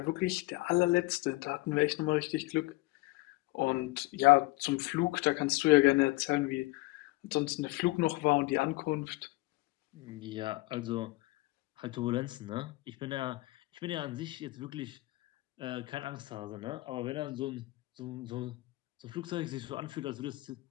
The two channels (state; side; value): quieter; right; 21.3 dB